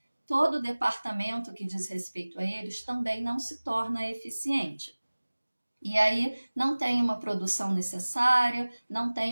todo o departamento que diz respeito a eles também não se torna eficiente. E aí não tem uma produção necessária, não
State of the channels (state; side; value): inverted; both; correlation -1.00